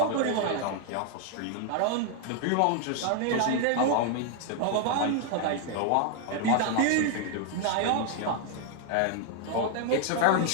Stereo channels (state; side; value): different; both; correlation 0.00